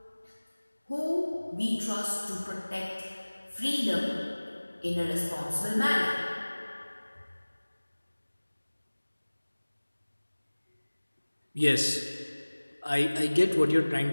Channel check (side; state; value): both; inverted; correlation -1.00